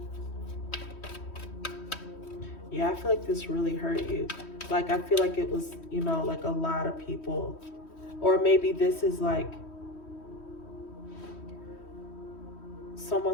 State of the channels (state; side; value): late; right; 3.1 ms